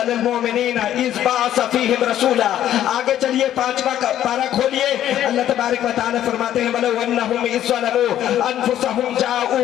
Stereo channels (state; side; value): quieter; right; 11.6 dB